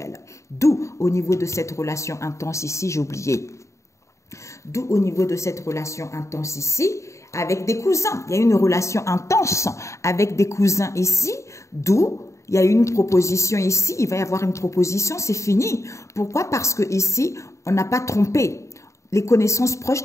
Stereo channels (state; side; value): late; right; 0.14 ms